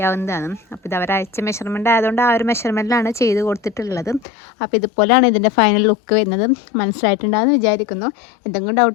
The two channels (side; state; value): right; drops out; at 4.2 s